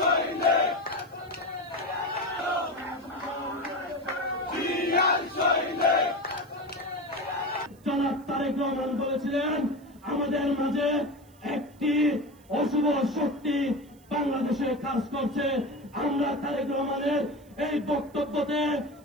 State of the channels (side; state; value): right; noise; hiss, 30 dB below the sound